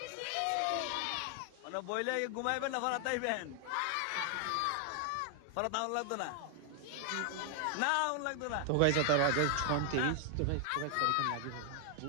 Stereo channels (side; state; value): both; different; correlation 0.00